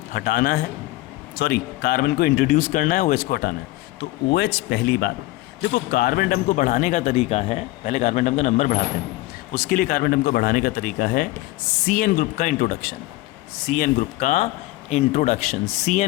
हटाना है, कार्बन को इंट्रोड्यूस करना है, OH को हटाना है। तो OH पहली बात, देखो कार्बन एटम को बढ़ाने का तरीका है, पहले कार्बन एटम का नंबर बढ़ाते हैं, उसके लिए कार्बन एटम को बढ़ाने का तरीका है CN ग्रुप का इंट्रोडक्शन। CN ग्रुप का इंट्रोडक्शन,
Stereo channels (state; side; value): quieter; right; 18.7 dB